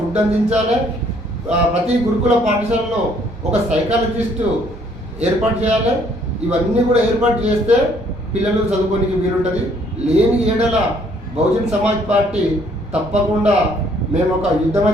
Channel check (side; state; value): both; normal; correlation 0.63